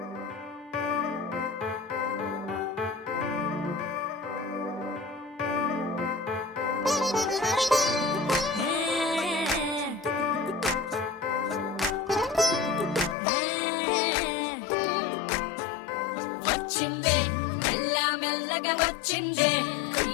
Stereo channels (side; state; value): right; drops out; at 13.2 s